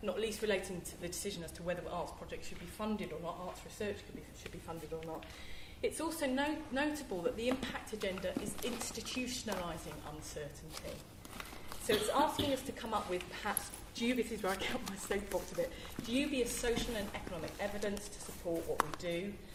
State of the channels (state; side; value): identical; both; correlation 1.00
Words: not least relating to the decision as to whether arts projects should be funded or not, arts research should be funded or not. It's also notable that the impact agenda is institutionalising uncertainty. So it's asking us to come up with perhaps this is where I get my soapbox a bit, dubious social and economic evidence to support what we do,